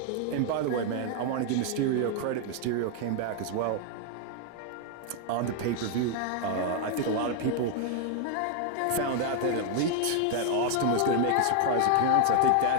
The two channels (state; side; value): different; both; correlation 0.00